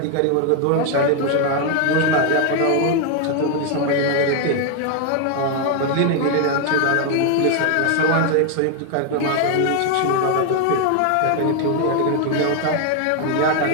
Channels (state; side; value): different; both; correlation 0.00